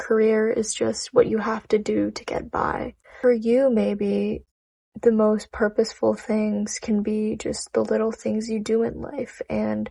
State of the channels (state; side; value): identical; both; correlation 1.00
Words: is just what you have to do to get by. For you, maybe the most purposeful things can be just the little things you do in life. And